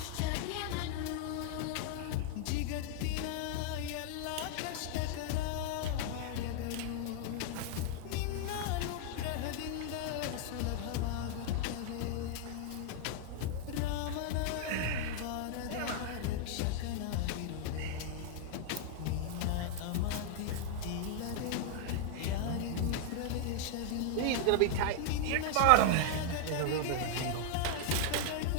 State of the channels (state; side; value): different; both; correlation -0.01